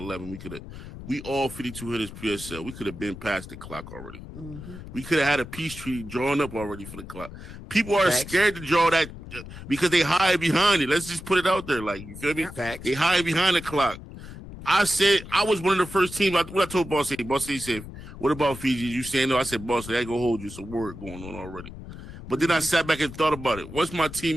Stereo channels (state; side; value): noise; left; rumble, 13 dB below the sound